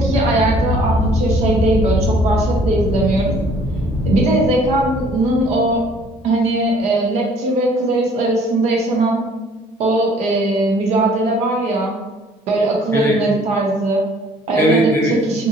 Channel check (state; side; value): normal; both; correlation 0.57